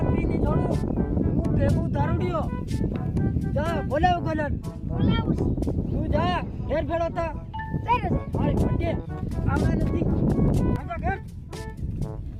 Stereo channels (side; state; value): both; identical; correlation 1.00